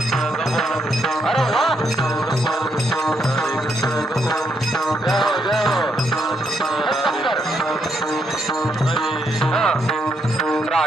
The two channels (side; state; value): both; normal; correlation 0.77